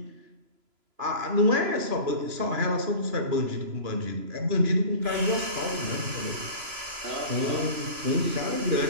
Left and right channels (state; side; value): late; left; 3.0 ms